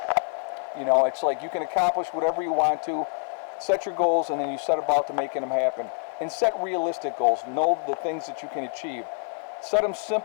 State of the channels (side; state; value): right; silent; 61 dB below the other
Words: You know, it's like you can accomplish whatever you want to. Set your goals, and then you set about to making them happen. And set realistic goals. Know the things that you can achieve. Set them